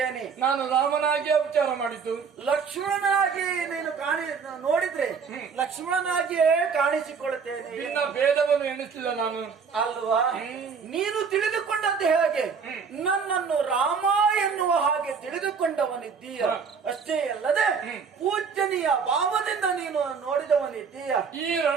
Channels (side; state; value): left; quieter; 5.8 dB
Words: ನಾನು ರಾಮನಾಗಿ ವಿಚಾರ ಮಾಡಿದ್ದು. ಲಕ್ಷ್ಮಣನಾಗಿ ನೀನು ನೋಡಿದ್ರೆ ಲಕ್ಷ್ಮಣನಾಗಿಯೇ ಕಾಣಿಸಿಕೊಳ್ಳುತ್ತೇನೆ. ನಿನ್ನ ಭೇದವನ್ನು ಎಣಿಸಲಿಲ್ಲ ನಾನು ಅಲ್ವಾ? ನೀನು ತಿಳಿದುಕೊಂಡದ್ದು ಹೇಗೆ? ನನ್ನನ್ನು ರಾಮ ಎನ್ನುವ ಹಾಗೆ ತಿಳಿದುಕೊಂಡವನಿದ್ದೀಯ. ಅಷ್ಟೇ ಅಲ್ಲದೆ ಪೂಜನೀಯ ಭಾವದಿಂದ ನೀನು ನೋಡಿದವನಿದ್ದೀಯ. ಈ